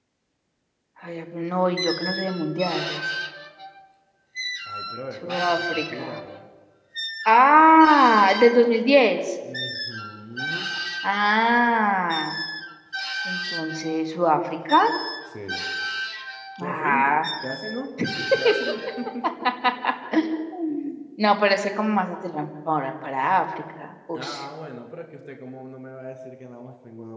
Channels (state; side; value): identical; both; correlation 1.00